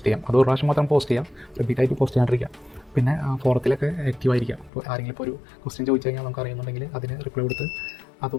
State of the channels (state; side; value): drops out; right; at 4.7 s